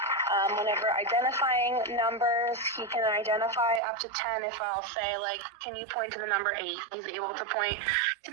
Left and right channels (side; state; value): left; drops out; at 3.8 s